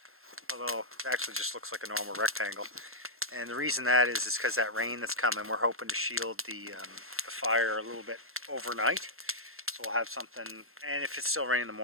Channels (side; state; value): left; late; 0.62 ms